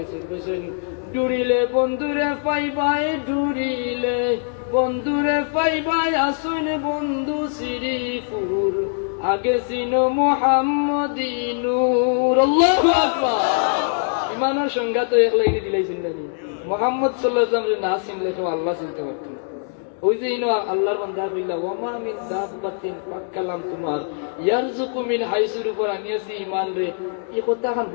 ডুরিলে বন্ধুরে পাইবাই ডুরিলে বন্ধুরে পাইবাই আসুন বন্ধু শ্রীপুর আগে সিনো মুহাম্মদী নূর আল্লাহু আকবার। ইমানের সংজ্ঞা তো এক লাইনে দিলাইছেন না মুহাম্মদ সাল্লাল্লাহু আলাইহি ওয়াসাল্লাম না চিনলে তো আল্লাহ চিনতে পারতেন। ওই যে ইনো আল্লাহর বান্দা কইলা ওয়ামা মিন দাব্বাতিন পাকালাম তোমার ইয়ারযুকু মিন হাইসুর উপর আনিয়াছি ঈমান রে এই কথা খান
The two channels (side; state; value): right; silent; digital silence